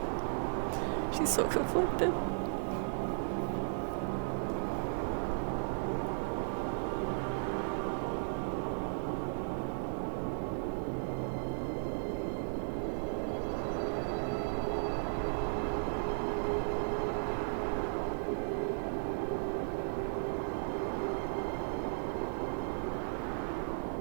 She's so conflicted.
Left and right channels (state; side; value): silent; left; digital silence